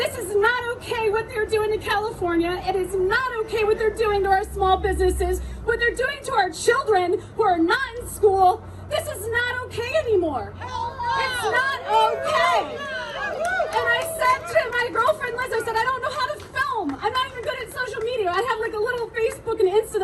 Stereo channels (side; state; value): both; identical; correlation 1.00